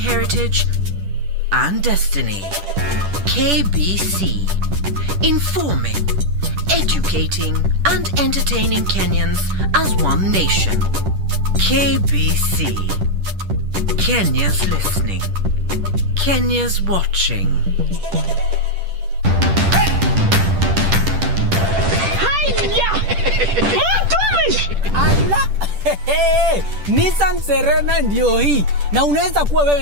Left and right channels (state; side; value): late; left; 10 ms